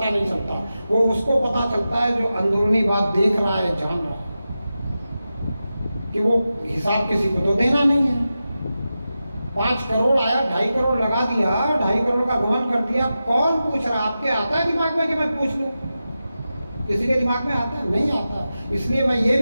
नहीं चलता। वो उसको पता चलता है जो अंदरूनी बात देख रहा है, जान रहा है, कि वो हिसाब किसी को तो देना नहीं है। 5 करोड़ आया, 2.5 करोड़ लगा दिया, 2.5 करोड़ का गमन कर दिया। कौन पूछ रहा? आपके आता है दिमाग में कि मैं पूछ लूं? किसी के दिमाग में आता है? नहीं आता। इसलिए मैं ये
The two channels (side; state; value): both; inverted; correlation -0.92